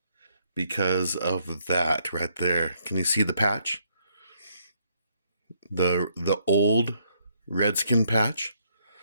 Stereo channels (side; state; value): both; inverted; correlation -0.72